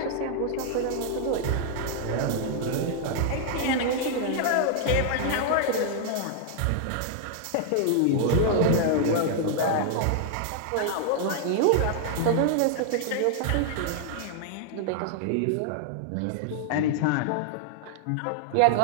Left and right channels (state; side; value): different; both; correlation 0.00